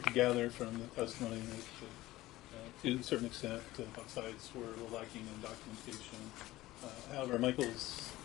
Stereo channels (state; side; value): quieter; right; 17.1 dB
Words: could gather from the testimony that to a certain extent both sides were lacking in documentation. However, Michael's